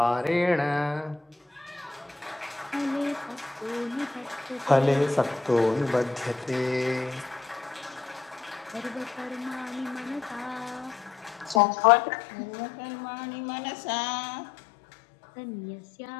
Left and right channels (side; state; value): right; drops out; at 11.6 s